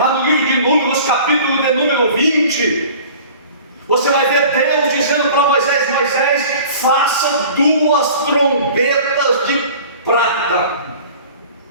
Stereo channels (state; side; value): inverted; both; correlation -0.44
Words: no livro de Números, capítulo de número 20, você vai ver Deus dizendo para Moisés: Moisés, faça 2 trombetas de prata.